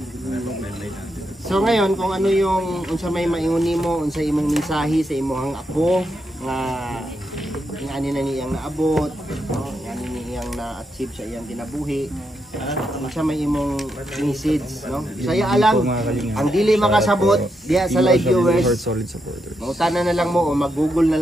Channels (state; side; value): normal; both; correlation 0.82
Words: So ngayon, kung ano yung unsa may maingon mo, unsa imong mensahe sa imong apo nga ani na niyang naabot, no, ani niyang na-achieve sa iyang kinabuhi. Unsa may imong message, no? Saya alang ang dili makasabot diha sa live viewers. Mautana na lang mo o mag-Google